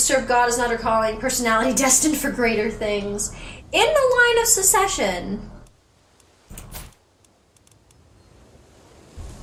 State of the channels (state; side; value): identical; both; correlation 1.00